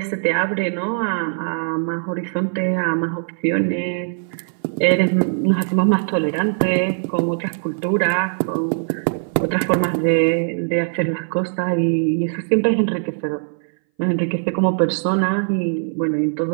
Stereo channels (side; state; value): left; silent; 60 dB below the other